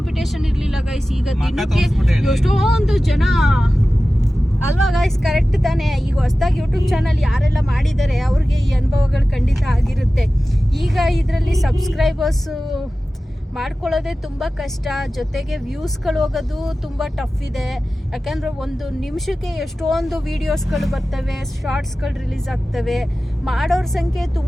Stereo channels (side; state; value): both; normal; correlation 0.95